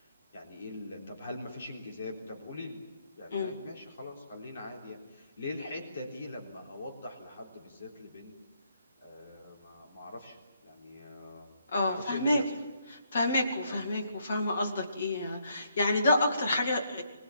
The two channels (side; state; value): both; inverted; correlation -0.73